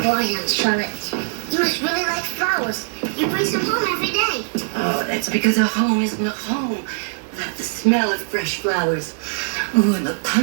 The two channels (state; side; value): silent; left; 63 dB below the other